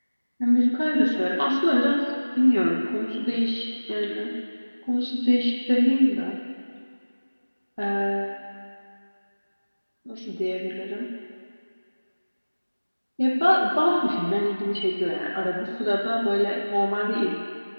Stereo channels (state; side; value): inverted; both; correlation -1.00